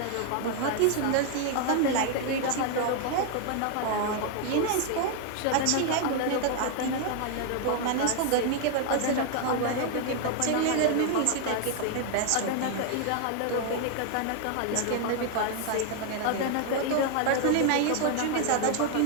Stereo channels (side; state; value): both; different; correlation 0.00